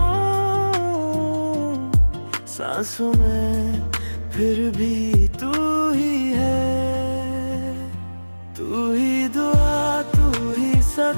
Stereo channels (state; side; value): inverted; both; correlation -1.00